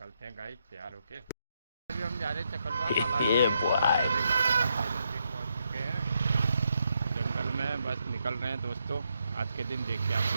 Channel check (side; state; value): both; inverted; correlation -0.80